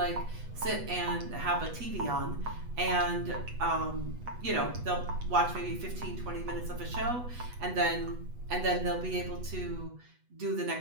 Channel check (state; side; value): late; left; 8.1 ms